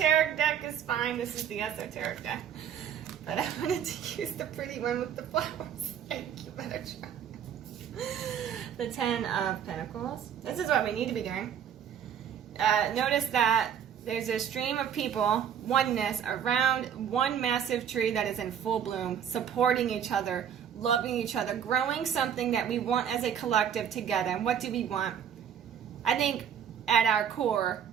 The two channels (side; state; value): left; quieter; 8.6 dB